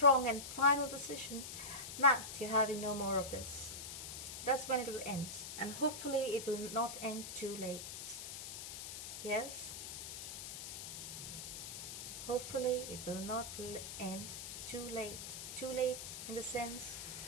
and final decision that you're having no more of this. That's when it will end. And hopefully it will not end too late. Yes? Hopefully it will not end too late. Too late in the sense,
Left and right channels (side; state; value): left; noise; hiss, 8 dB below the sound